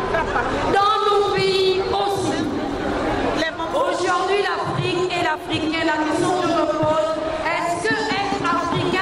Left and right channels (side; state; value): both; identical; correlation 1.00